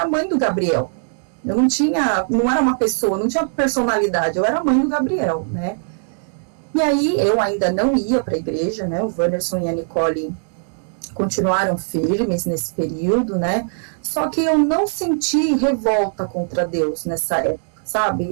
mãe do Gabriel. Eu não era uma pessoa, não tinha personalidade. Eu era mãe do Gabriel, né? E aí, eu ainda não ia para a igreja, né, o Wanderson e a Nicole continuaram firmes nesse período, né, só que eu não senti revolta contra Deus nessa época,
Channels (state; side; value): silent; left; digital silence